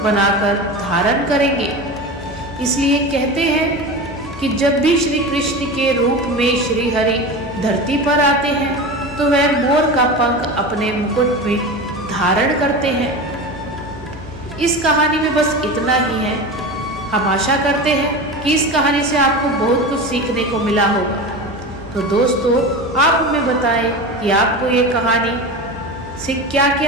बनाकर धारण करेंगे। इसलिए कहते हैं कि जब भी श्री कृष्ण के रूप में श्री हरि धरती पर आते हैं तो वह मोर का पंख अपने मुकुट में धारण करते हैं। इस कहानी में बस इतना ही है। हम आशा करते हैं कि इस कहानी से आपको बहुत कुछ सीखने को मिला होगा। तो दोस्तों, आप हमें बताएं कि आपको ये कहानी से क्या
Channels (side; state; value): both; normal; correlation 0.27